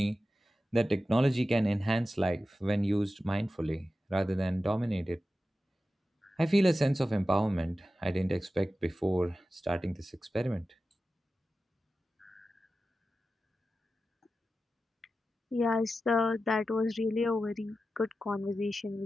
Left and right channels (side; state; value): both; normal; correlation 0.93